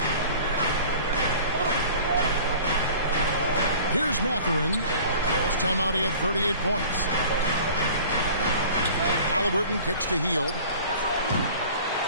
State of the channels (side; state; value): both; inverted; correlation -0.44